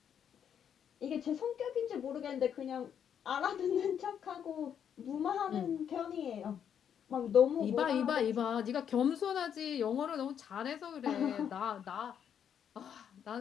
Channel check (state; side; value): quieter; right; 8.5 dB